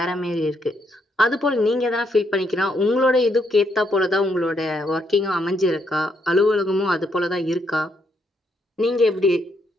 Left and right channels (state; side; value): normal; both; correlation 0.75